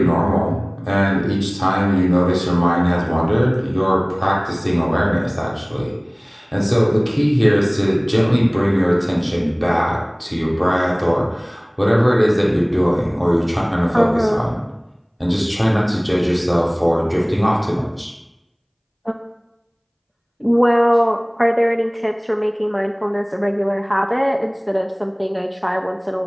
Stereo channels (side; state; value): both; identical; correlation 1.00